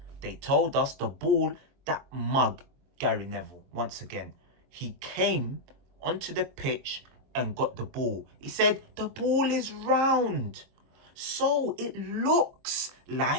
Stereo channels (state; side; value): late; left; 23 ms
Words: They told us the ball, that mug, Gary Neville, once again, he came onto the pitch and got the ball. He said, the ball is round. So it looks